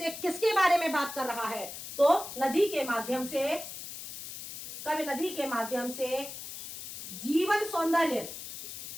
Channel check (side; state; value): left; noise; hiss, 10 dB below the sound